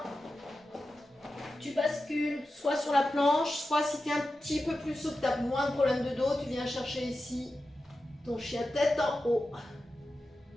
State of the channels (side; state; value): both; normal; correlation 0.92